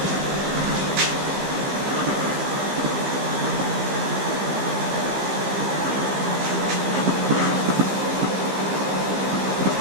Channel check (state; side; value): late; left; 15 ms